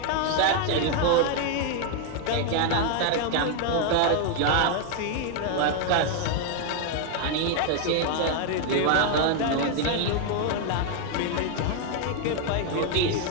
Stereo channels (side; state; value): both; different; correlation 0.00